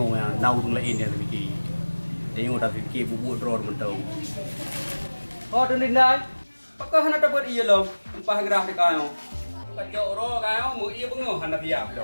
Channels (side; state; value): both; inverted; correlation -1.00